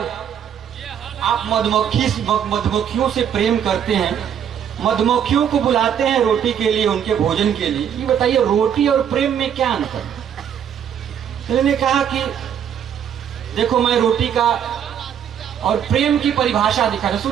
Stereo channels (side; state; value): left; quieter; 8.9 dB